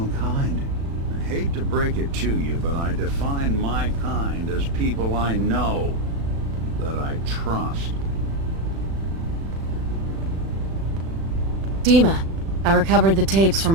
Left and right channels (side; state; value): left; late; 36 ms